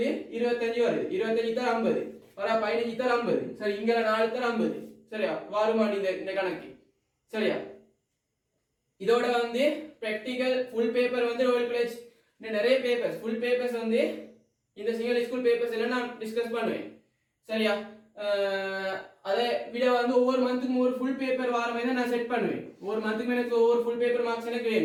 25 வருது 25 தர 50 வர 15 தர 50 சரி இங்க 4 தர 50 சரியா வருமா இந்த கணக்கு சரியா இதோட வந்து பிராக்டிகல் ஃபுல் பேப்பர் வந்து ரோயல் காலேஜ் நிறைய பேப்பர்ஸ் ஃபுல் பேப்பர்ஸ் வந்து இந்த சிங்கிள் ஸ்கூல் பேப்பர்ஸ் எல்லாம் நான் டிஸ்கஸ் பண்ணுவேன் சரியா அதே விட வந்து ஒவ்வொரு மந்த்துக்கும் ஒரு ஃபுல் பேப்பர் வார மாதிரி நான் செட் பண்ணுவேன் ஒவ்வொரு மந்த்துக்கும் எனக்கு ஒவ்வொரு ஃபுல் பேப்பர் மார்க்ஸ் எனக்கு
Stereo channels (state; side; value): identical; both; correlation 1.00